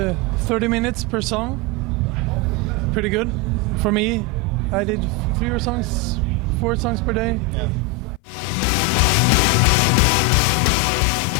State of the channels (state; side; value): drops out; right; at 8.2 s